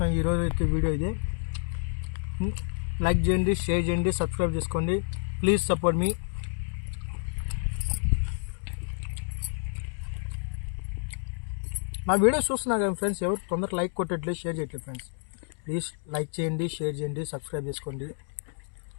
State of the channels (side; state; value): right; silent; digital silence